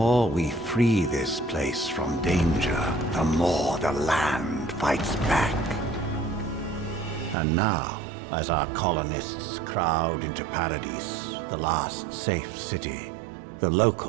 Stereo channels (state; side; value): drops out; left; at 7.4 s